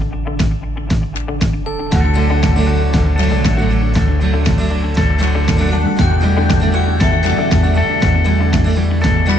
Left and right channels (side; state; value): both; normal; correlation 0.77